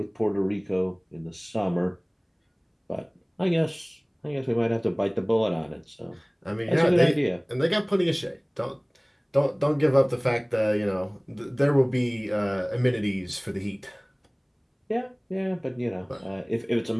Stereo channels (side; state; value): both; identical; correlation 1.00